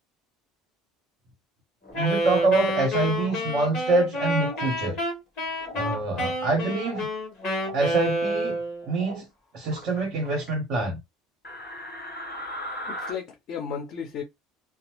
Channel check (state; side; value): normal; both; correlation 0.54